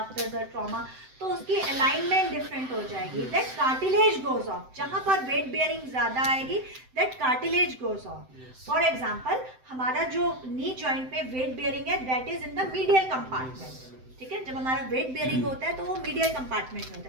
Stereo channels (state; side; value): late; left; 7.8 ms